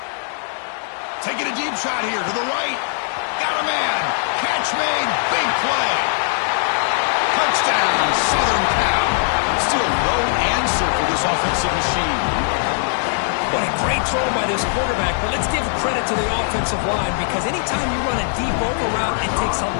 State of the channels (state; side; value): silent; right; digital silence